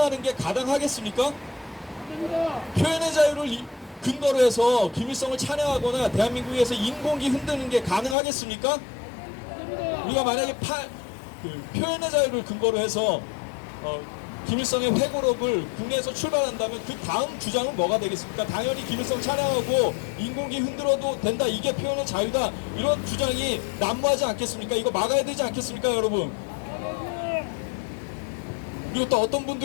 게 가당하겠습니까? 표현의 자유를 근거로 해서 김일성을 찬양하거나 대한민국에서 인공기 흔드는 게 가능하겠습니까? 우리가 만약에 표현의 자유를 근거로 해서 김일성의 회고록을 국내에서 출발한다면 그 다음 주장은 뭐가 되겠습니까? 당연히 김일성 찬양하고 인공기 흔들어도 된다, 이게 표현의 자유다, 이런 주장이 난무하지 않겠습니까? 이거 막아야 되지 않겠습니까, 여러분? 그리고 또 어떤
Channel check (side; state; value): right; drops out; at 8.2 s